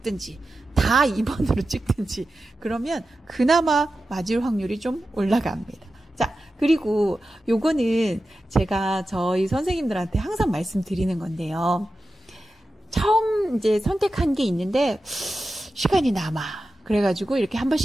다 2번으로 찍든지 그러면 그나마 맞을 확률이 좀 올라갑니다. 자, 그리고 요거는 제가 저희 선생님들한테 항상 말씀드리는 건데요. 처음 이제 선택한 게 있는데 시간이 남아. 그래가지고 이렇게 한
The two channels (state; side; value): normal; both; correlation 0.92